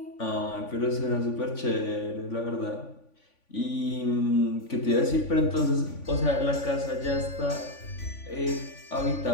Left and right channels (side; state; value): right; late; 3.5 ms